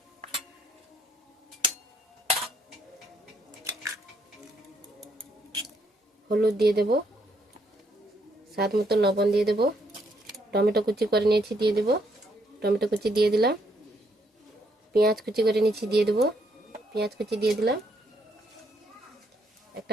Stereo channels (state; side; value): normal; both; correlation 0.72